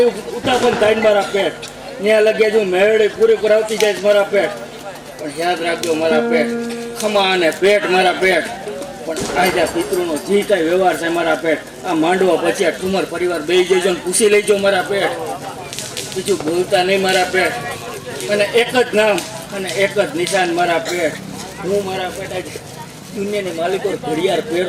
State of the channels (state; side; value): identical; both; correlation 1.00